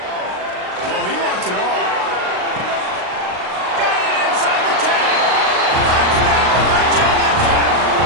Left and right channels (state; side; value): late; left; 38 ms